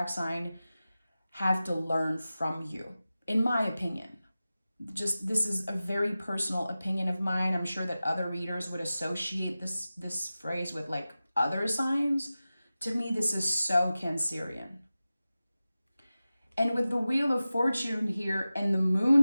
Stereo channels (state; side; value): inverted; both; correlation -0.95